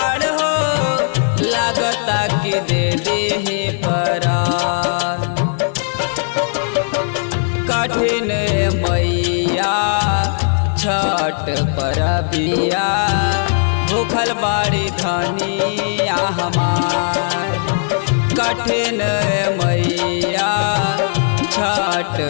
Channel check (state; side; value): silent; right; 68 dB below the other